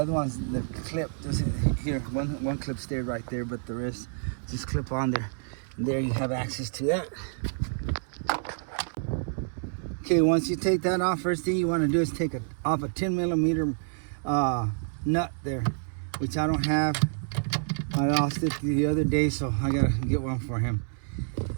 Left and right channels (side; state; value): left; silent; 59 dB below the other